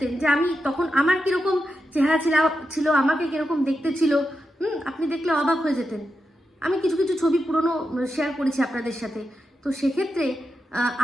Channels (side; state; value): both; normal; correlation 0.88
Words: যে আমি তখন আমার কিরকম চেহারা ছিল, আমাকে কিরকম দেখতে ছিল, আপনি দেখলে অবাক হয়ে যেতেন। আমি কিছু ছবি পুরনো শেয়ার করেছি আপনাদের সাথে। তো সেক্ষেত্রে